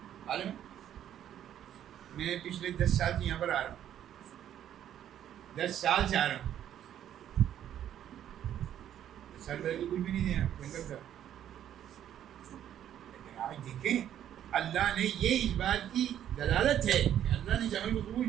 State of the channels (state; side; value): quieter; left; 10.7 dB